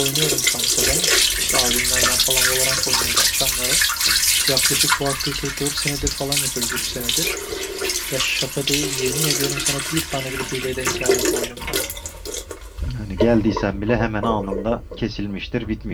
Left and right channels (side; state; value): both; identical; correlation 1.00